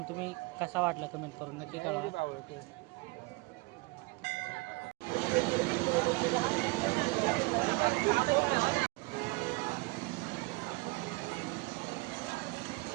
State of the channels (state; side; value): quieter; left; 24.1 dB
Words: तुम्ही कसा वाटला कमेंट करून नक्की कळवा.